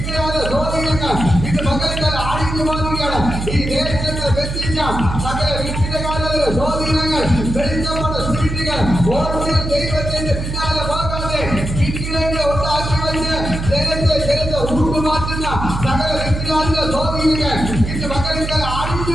സ്വാധീനങ്ങൾ ഇത് മകൾക്കാല അടിഞ്ഞു മാറുകയാണ്. ഈ ദേശങ്ങളെ ബന്ധിച്ച സകല വിഗ്രഹകാരുടെ സ്വാധീനങ്ങൾ, വെളിച്ചപ്പെട്ട സ്പിരിറ്റുകൾ ഓരോ ദൈവത്തിന്റെ പിന്നാലെ പോകാതെ വിഗ്രഹങ്ങളെ ഉണ്ടാക്കി വെച്ച് ജനത്തെ ഉറുമാറ്റുന്ന സകല വിഗ്രഹങ്ങളുടെ സ്വാധീനങ്ങൾ ഇത് മകൾക്കാല അടിഞ്ഞു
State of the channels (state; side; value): noise; right; hum, 5 dB below the sound